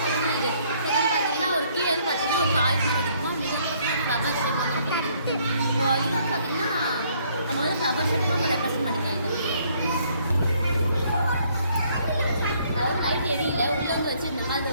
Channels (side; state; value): both; inverted; correlation -0.65